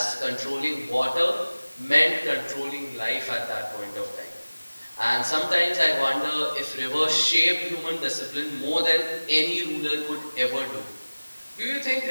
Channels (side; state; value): both; inverted; correlation -1.00